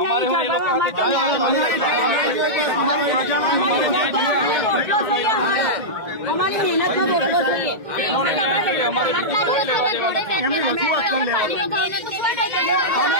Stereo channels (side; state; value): left; late; 1.8 ms